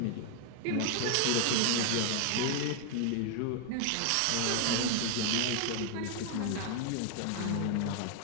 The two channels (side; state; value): both; different; correlation 0.00